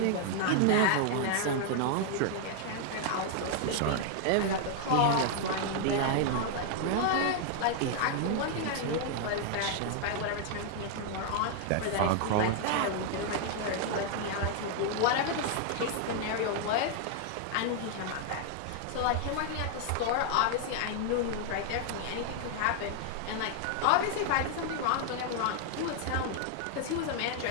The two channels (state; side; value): different; both; correlation 0.00